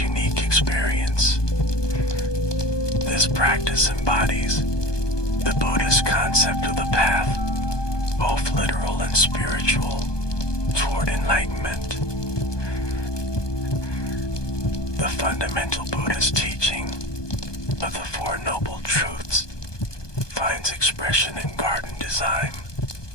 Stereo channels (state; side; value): late; right; 1.2 ms